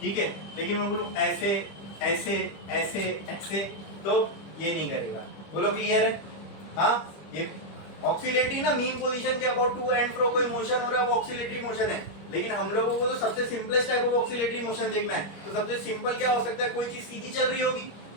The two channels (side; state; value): right; late; 25 ms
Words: है, लेकिन मैं बोलूं ऐसे ऐसे ऐसे ऐसे तो ये नहीं करेगा। बोलो क्लियर है? हाँ, ये ऑक्सीलेटरी ना मीन पोजीशन के अबाउट टू एंड फ्रो कोई मोशन हो रहा है वो ऑक्सीलेटरी मोशन है। लेकिन हम लोगों को तो सबसे simplest type of oscillatory motion देखना है, तो सबसे सिंपल क्या हो सकता है? कोई चीज सीधी चल रही होगी,